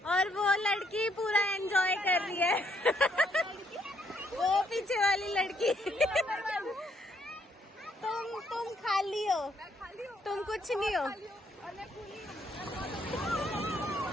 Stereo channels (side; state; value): both; normal; correlation 0.71